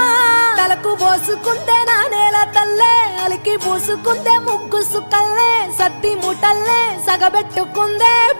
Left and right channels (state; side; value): inverted; both; correlation -1.00